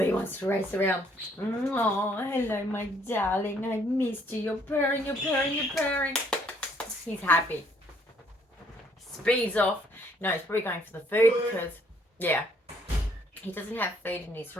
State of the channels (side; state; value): both; normal; correlation 0.65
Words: wants to race around. Oh, hello, my darling. I missed you. You're purring, you're purring, you're purring. He's happy. Speeds off. No, he's probably going for the food because, yeah, he doesn't have food in his